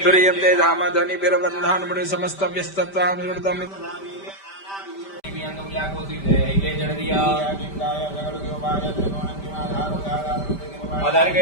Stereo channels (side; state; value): right; late; 5.1 ms